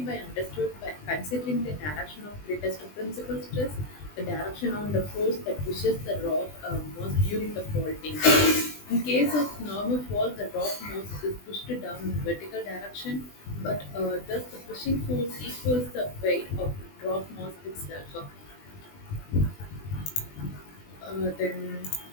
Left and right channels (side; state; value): right; late; 20 ms